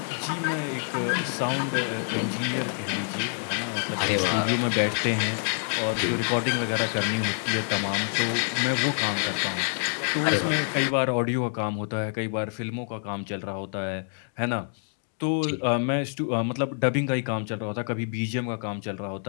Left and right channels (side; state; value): right; silent; 60 dB below the other